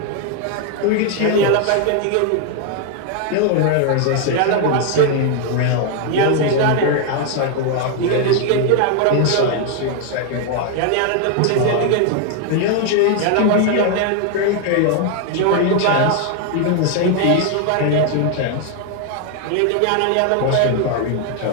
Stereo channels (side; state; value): both; different; correlation 0.00